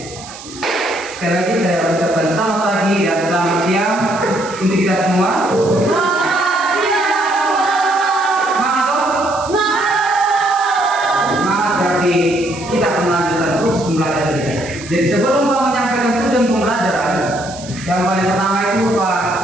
Sekali lagi saya ucapkan selamat pagi dan selamat siang untuk kita semua. Semangat toh? Semangat berarti kita akan melanjutkan terus pembelajaran kita. Jadi sebelum Pak menyampaikan tujuan pembelajaran, yang paling pertama itu Pak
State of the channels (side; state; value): right; noise; hiss, 16 dB below the sound